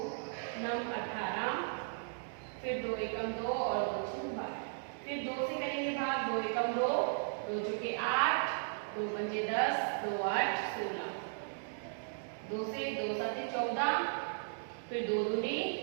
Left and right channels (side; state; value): left; silent; digital silence